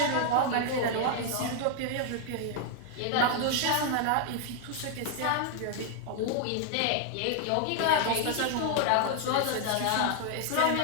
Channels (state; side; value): different; both; correlation 0.00